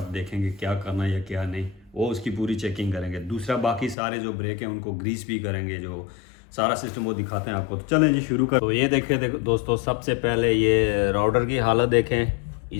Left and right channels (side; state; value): right; drops out; at 4.0 s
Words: देखेंगे क्या करना है या क्या नहीं, वो उसकी पूरी चेकिंग करेंगे। दूसरा बाकी सारे जो ब्रेक हैं उनको ग्रीस भी करेंगे, जो सारा सिस्टम वो दिखाते हैं आपको। तो चलें जी शुरू कर। तो ये देखें, देखो दोस्तों, सबसे पहले ये राउडर की हालत देखें,